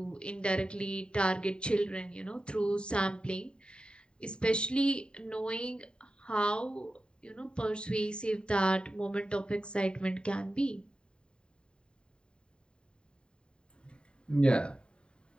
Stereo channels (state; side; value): late; right; 0.051 ms